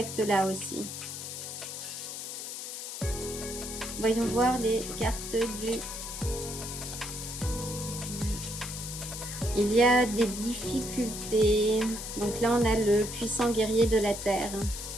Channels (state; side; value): noise; left; hiss, 7 dB below the sound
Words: aussi. Voyons voir les cartes du... Il y a des difficultés. Donc là, on a le puissant guerrier de la terre.